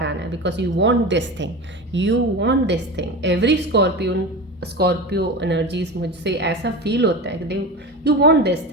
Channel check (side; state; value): both; normal; correlation 0.27